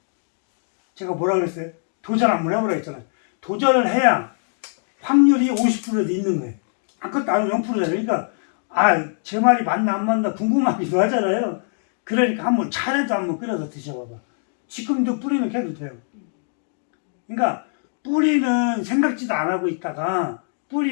제가 뭐라 그랬어요? 도전 한번 해보라 했잖아요. 도전을 해야 확률이 50%도 있는 거예요. 아무것도 안 하면 0%잖아요. 그러니까 제 말이 맞나 안 맞나 궁금하기도 하잖아요. 그러니까 한번 차라도 한번 끓여서 드셔봐봐. 지금도 뿌리는 캐도 돼요. 그러니까 뿌리는 생각지도 안 하고 있다가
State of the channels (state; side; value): silent; right; digital silence